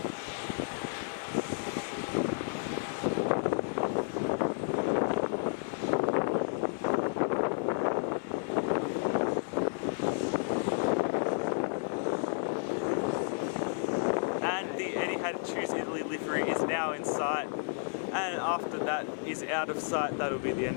And the Etihad Choose Italy livery is now in sight. And after that is out of sight, that'll be the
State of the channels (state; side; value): silent; right; digital silence